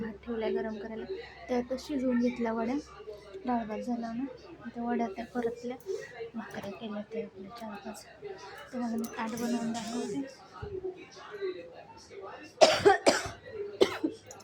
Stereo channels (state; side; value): identical; both; correlation 1.00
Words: ठेवला गरम करायला. त्यातच शिजवून घेतल्या वड्या. डाळ भात झाला ना, त्या वड्या त्या परतल्या, भाकऱ्या केल्या ते आपल्या 4-5. तुम्हाला मी ताट बनवून दाखवते.